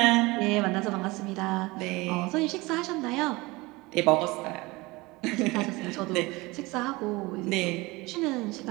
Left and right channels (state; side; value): quieter; left; 22.6 dB